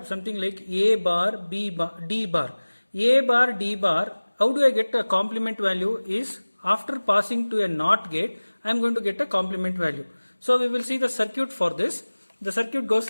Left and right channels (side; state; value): both; inverted; correlation -1.00